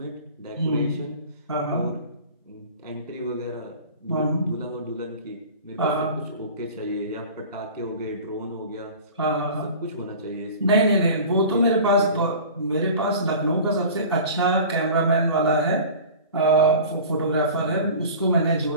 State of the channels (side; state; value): both; inverted; correlation -0.39